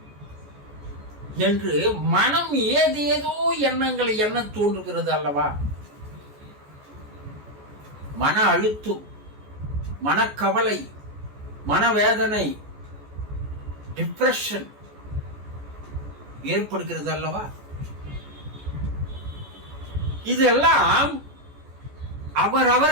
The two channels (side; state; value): left; late; 14 ms